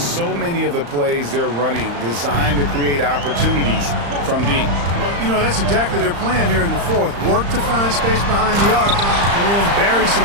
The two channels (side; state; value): left; late; 35 ms